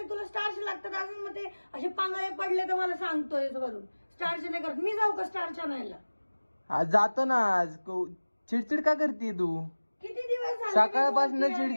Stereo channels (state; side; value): inverted; both; correlation -1.00